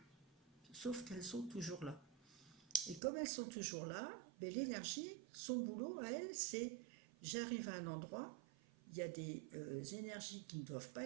Sauf qu'elles sont toujours là. Et comme elles sont toujours là, ben, l'énergie, son boulot à elle, c'est j'arrive à un endroit, il y a des énergies qui ne doivent pas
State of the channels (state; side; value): drops out; left; at 3.0 s